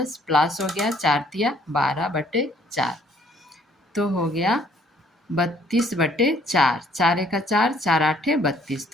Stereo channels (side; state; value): both; normal; correlation 0.61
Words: प्लस हो गया 4 तिया 12/4, तो हो गया 32/4, 4 एका 4, 4 8 32।